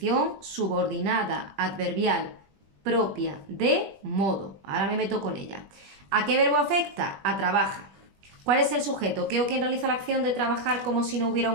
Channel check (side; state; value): left; late; 20 ms